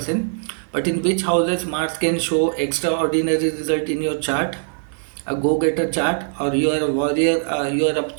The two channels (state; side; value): silent; left; 65 dB below the other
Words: But in which houses Mars can show extraordinary result in your chart, a go-getter chart, or you are a warrior, you are a